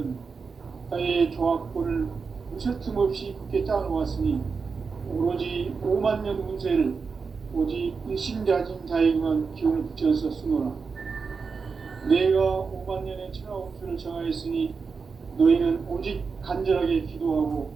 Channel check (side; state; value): left; quieter; 5.1 dB